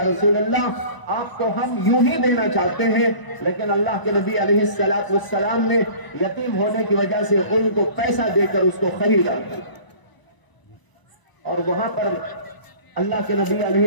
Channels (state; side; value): late; right; 1.0 ms